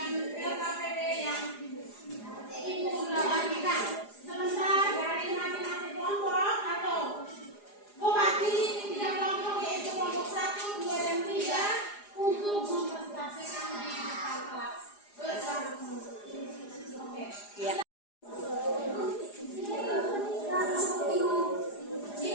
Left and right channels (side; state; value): right; late; 4.9 ms